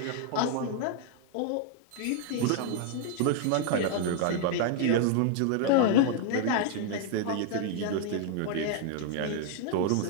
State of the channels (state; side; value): different; both; correlation 0.00